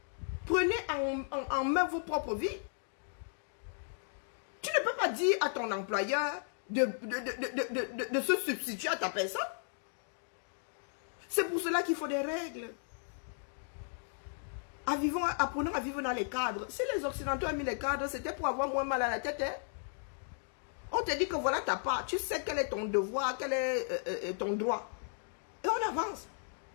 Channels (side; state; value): right; silent; digital silence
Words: Prenez en main vos propres vies. Tu ne peux pas dire à ton employeur de se substituer à ta personne. C'est pour cela qu'il faut des règles. Apprenons à vivre dans les cadres. Si les Occidentaux ont mis les cadres, c'était pour avoir moins mal à la tête. Hein? On te dit que voilà ta part. Tu sais quel est ton devoir, quel est ton droit. Et on avance.